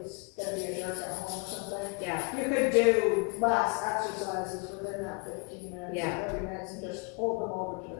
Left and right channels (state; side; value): quieter; right; 32.2 dB